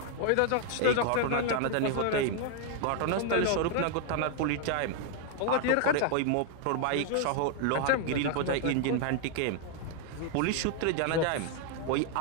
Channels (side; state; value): both; different; correlation 0.00